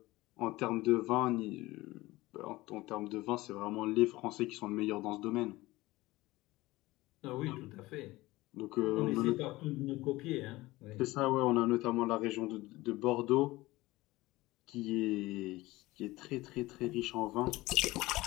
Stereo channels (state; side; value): quieter; right; 19.3 dB